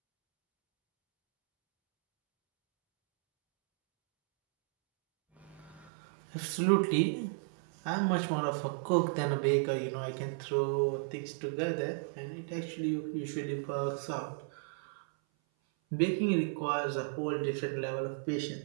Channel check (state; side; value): drops out; left; at 5.9 s